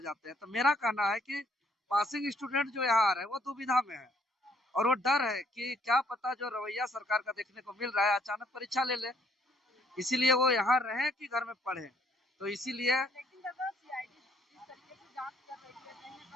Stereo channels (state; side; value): normal; both; correlation 0.65